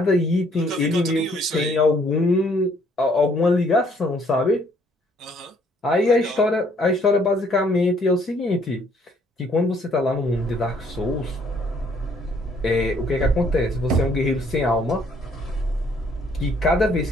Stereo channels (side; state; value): both; normal; correlation 0.64